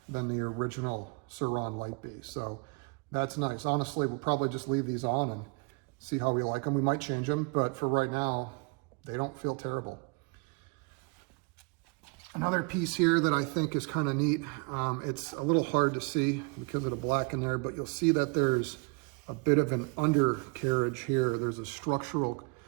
than the original Sur Ron Light Bee. So that's nice. Honestly, we'll probably just leave these on and see how we like them. We might change them, but for right now, they don't feel terrible. Another piece here that I think is kind of neat, it's a little hard to see because of the black in there, but you'll see that there's a bit of an undercarriage here. There's a structural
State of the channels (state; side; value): quieter; left; 31.6 dB